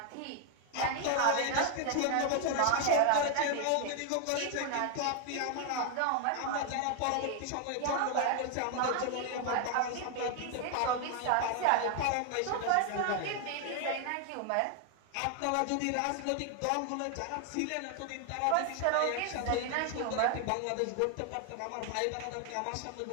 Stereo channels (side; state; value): both; different; correlation 0.00